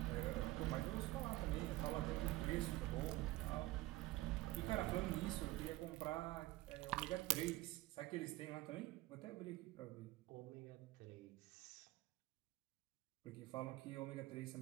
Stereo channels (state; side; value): quieter; left; 18.2 dB